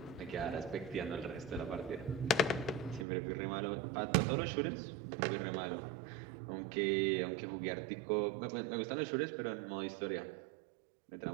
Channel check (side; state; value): left; drops out; at 3.1 s